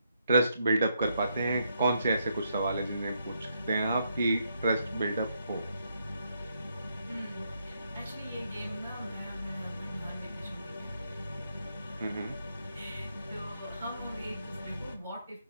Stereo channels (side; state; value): both; inverted; correlation -0.77